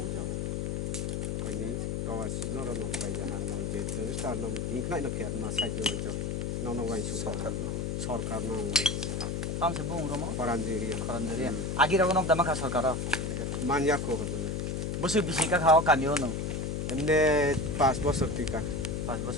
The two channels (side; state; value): left; noise; hum, 1 dB below the sound